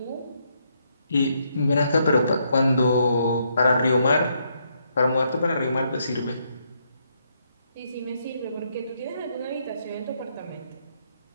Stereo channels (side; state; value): both; inverted; correlation -0.75